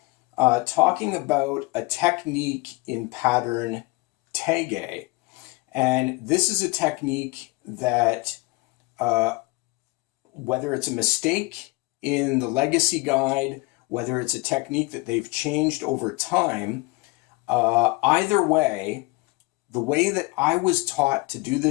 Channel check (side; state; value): right; quieter; 24.8 dB